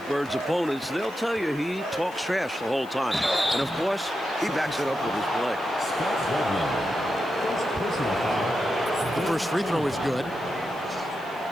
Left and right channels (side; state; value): right; noise; hiss, 25 dB below the sound